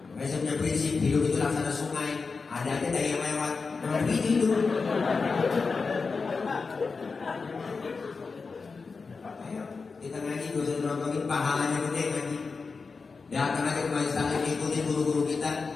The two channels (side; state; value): right; quieter; 4.6 dB